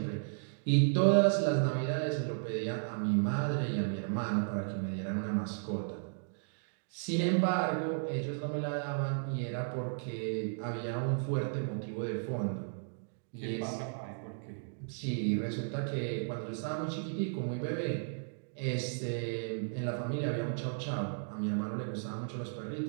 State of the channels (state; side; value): silent; left; digital silence